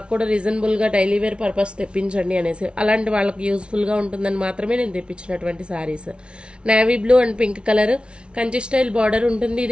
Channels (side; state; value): left; late; 0.058 ms